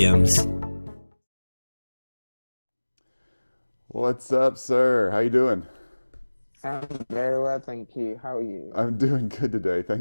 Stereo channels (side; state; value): both; inverted; correlation -1.00